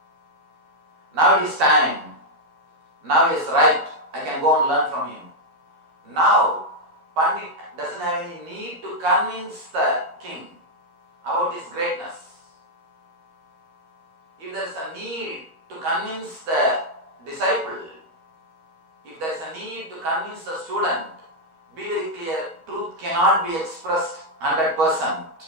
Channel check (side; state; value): left; late; 12 ms